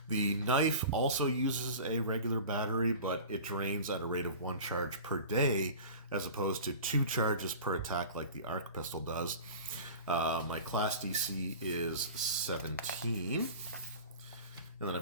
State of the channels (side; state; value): both; inverted; correlation -0.37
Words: The knife also uses a regular battery, but it drains at a rate of 1 charge per day, as opposed to 2 charges per attack like the arc pistol does. My class DC is 17. And then